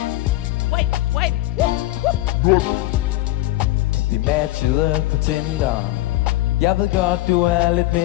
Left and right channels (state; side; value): quieter; right; 17.3 dB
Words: Swipe. Vi matchede på Tinder. Jeg ved godt du er lidt